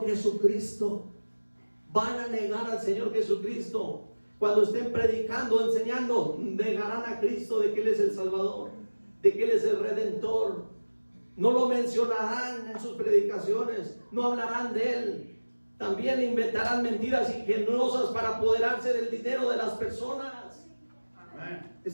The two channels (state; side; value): inverted; both; correlation -1.00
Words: Jesucristo. Van a negar al Señor Jesucristo. Cuando estén predicando, enseñando, negarán a Cristo, de que Él es el Salvador, de que Él es el Redentor. No lo mencionarán en sus predicaciones, no hablarán de Él. También inventarán mentiras ingeniosas para apoderarse del dinero de las personas.